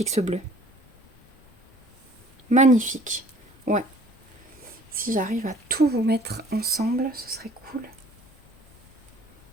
ce bleu. Magnifique. Ouais. Si j'arrive à tout vous mettre ensemble, ce serait cool.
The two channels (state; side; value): normal; both; correlation 0.53